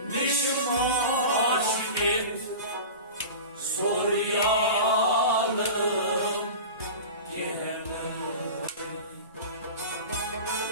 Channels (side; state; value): both; inverted; correlation -0.32